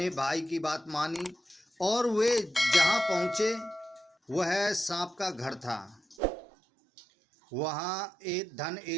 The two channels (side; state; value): left; drops out; at 6.2 s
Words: भाई की बात मानी और वे जहाँ पहुँचे वह सांप का घर था। वहाँ एक धन